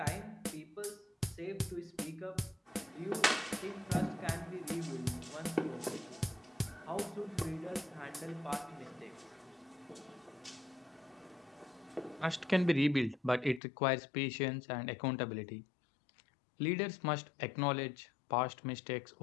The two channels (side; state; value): right; drops out; at 13.6 s